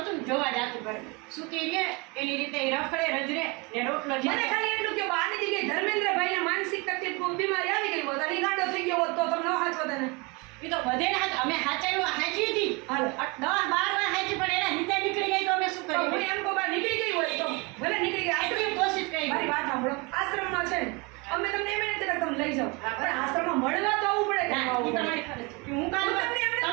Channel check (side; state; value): left; quieter; 28.1 dB